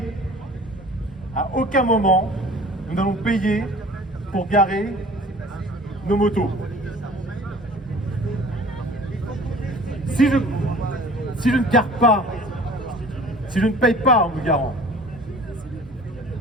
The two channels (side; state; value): both; normal; correlation 0.46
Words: à aucun moment, nous n'allons payer pour garer nos motos. Si je ne gare pas, si je ne paye pas en me garant,